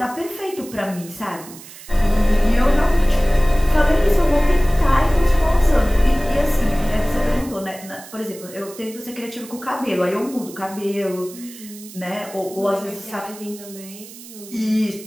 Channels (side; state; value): right; noise; hiss, 17 dB below the sound